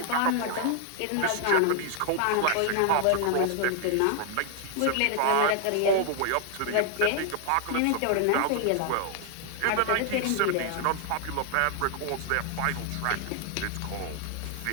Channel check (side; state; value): both; different; correlation 0.00